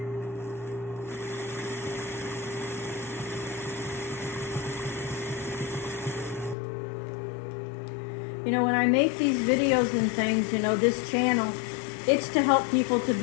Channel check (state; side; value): drops out; right; at 6.6 s